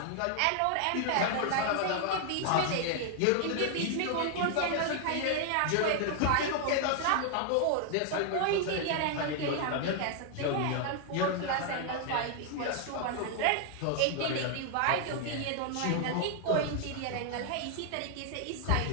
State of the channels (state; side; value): different; both; correlation 0.00